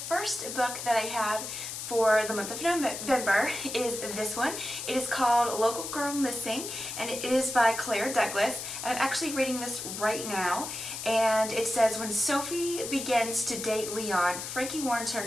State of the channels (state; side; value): noise; left; hiss, 7 dB below the sound